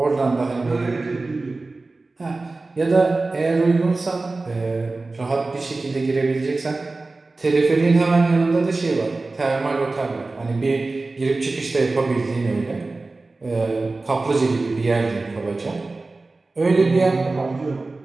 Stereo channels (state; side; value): quieter; left; 3.4 dB